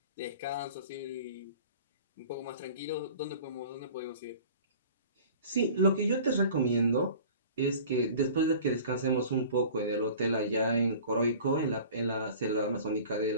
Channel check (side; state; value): both; inverted; correlation -0.44